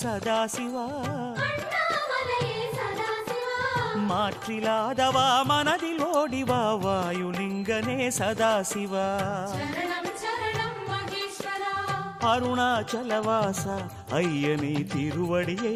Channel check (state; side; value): identical; both; correlation 1.00